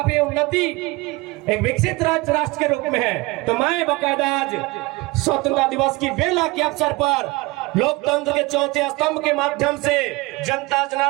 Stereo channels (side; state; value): left; quieter; 22.9 dB